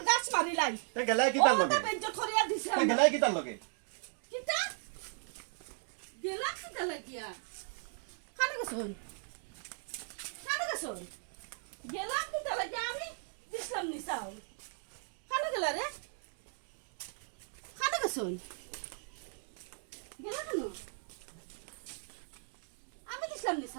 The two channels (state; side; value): silent; left; 53 dB below the other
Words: গাছ মারিলাই তে গেলাই কি তার লগে বেজ্জত করিয়া দিছে তে গেলাই কি তার লগে কিতা গেলা কিতা লাগিয়া খানে গেছন গেলাম কিন্তু লাগে আমি দিছিলাম নি চাউল খানে গেলা রে খানে গেছন গেলা কেন আমি দিছিলাম নি